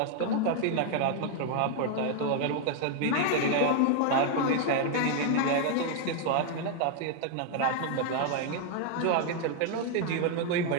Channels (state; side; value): different; both; correlation 0.00